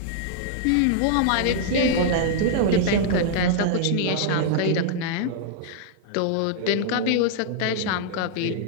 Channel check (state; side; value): different; both; correlation -0.01